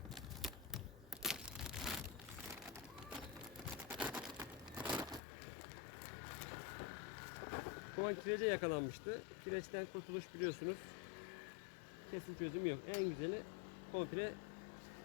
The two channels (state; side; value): drops out; right; at 5.2 s